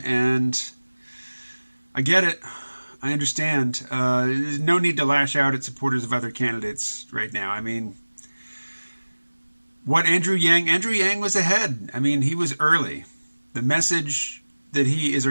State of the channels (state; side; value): inverted; both; correlation -1.00